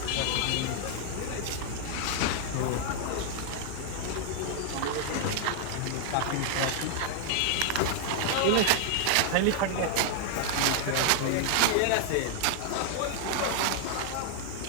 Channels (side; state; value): both; different; correlation 0.00